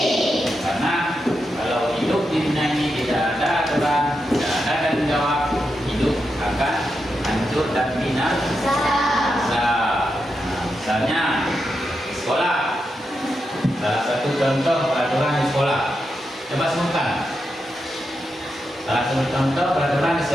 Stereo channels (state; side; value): normal; both; correlation 0.86